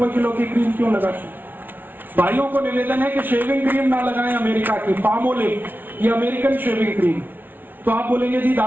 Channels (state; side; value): late; left; 0.091 ms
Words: किलो की क्रीम क्यों लगाते? भाइयों को निवेदन है कि शेविंग क्रीम ना लगाएं अमेरिका की, पामोलिव, ये अमेरिकन शेविंग क्रीम। तो आप बोलेंगे जी